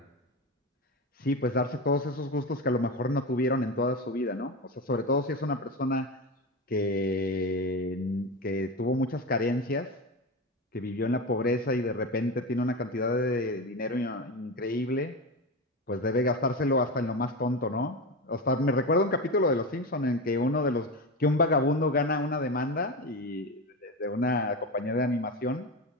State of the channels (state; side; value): normal; both; correlation 0.21